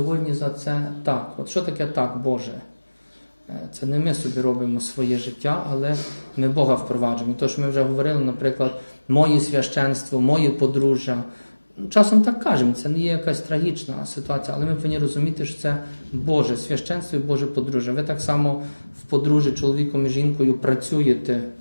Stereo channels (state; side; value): inverted; both; correlation -1.00